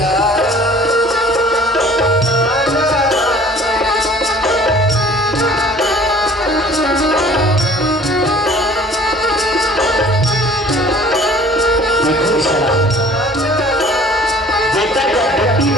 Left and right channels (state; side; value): normal; both; correlation 0.51